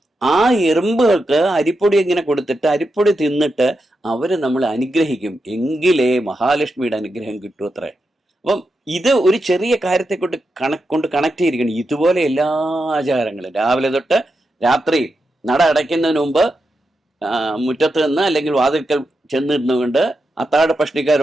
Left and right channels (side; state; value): both; normal; correlation 0.87